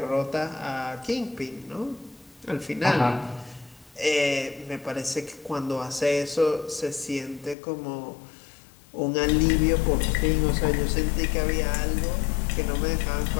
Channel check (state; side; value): drops out; right; at 7.6 s